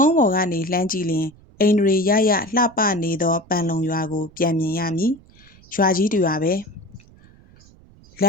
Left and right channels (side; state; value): right; noise; rumble, 26 dB below the sound